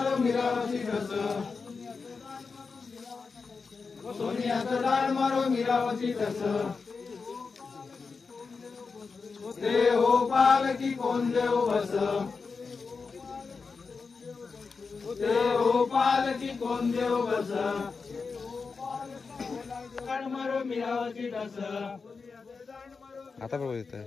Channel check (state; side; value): quieter; right; 4.8 dB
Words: मीरावती ढस सोनियाचं दांड मारो मीरावती ढस ते हो पालकी कोण देव बस ते हो पालकी कोण देव बस दांड मारो मीरावती ढस आता बरोबर येतं